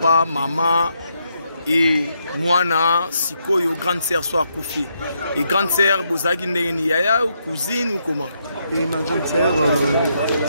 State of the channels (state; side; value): inverted; both; correlation -0.78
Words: maman et moi, Sikoyo, grande sœur, soit coupé. Et grande sœur, vous avez une yaya ou cousine ou comment? Et ma grande sœur